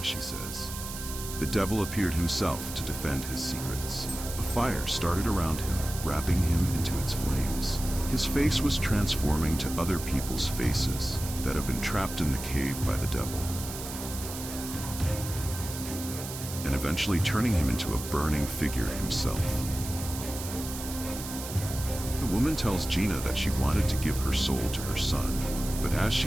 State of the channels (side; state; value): right; noise; hiss, 9 dB below the sound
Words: she says. The devil appeared himself to defend his secrets. A fire started around him, wrapping him into its flames. His face was transforming to other people's faces that have been trapped in the cave by the devil, and eventually turning him into a burning figure himself. The woman tells Gina that she wanted to give her soul to her son, but as